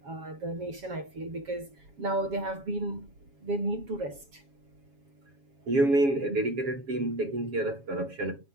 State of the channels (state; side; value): late; left; 7.3 ms